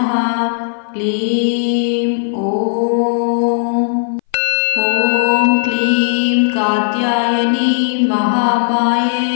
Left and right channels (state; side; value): silent; right; 62 dB below the other